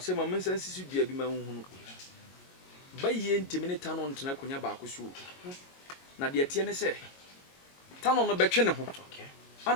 mensa sisi bia bi ma hunhunu bayi ntimi ne tano ntena konya ba akoso na de tie ne se tano no betwe ne ho okay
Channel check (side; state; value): right; late; 22 ms